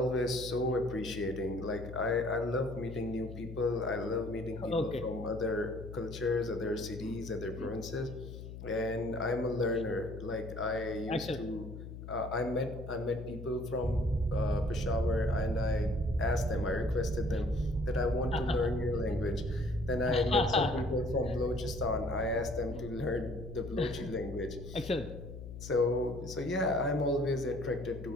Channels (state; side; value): noise; left; hum, 11 dB below the sound